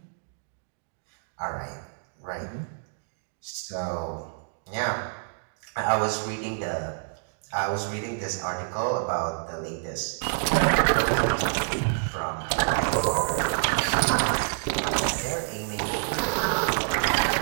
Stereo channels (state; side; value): silent; left; digital silence